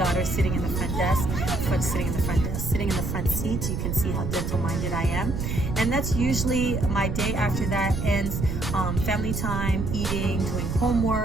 sitting in the front desk, sitting in the front seat. You can see how dental minded I am. And that's usually my day. After that ends family time, eating, doing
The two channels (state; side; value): noise; right; rumble, 2 dB below the sound